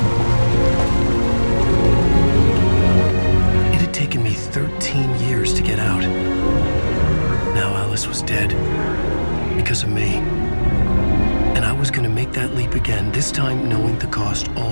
Alice was dead. Because of me. And I was gonna make that leap again, this time knowing the cost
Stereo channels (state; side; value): inverted; both; correlation -1.00